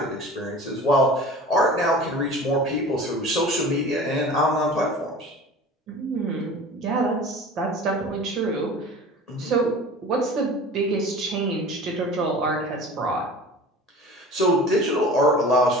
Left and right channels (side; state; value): both; normal; correlation 0.39